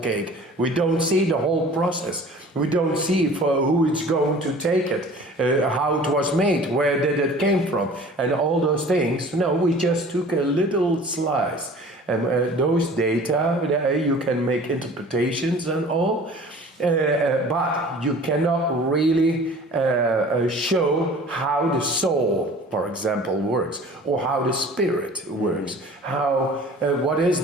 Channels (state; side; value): normal; both; correlation 0.45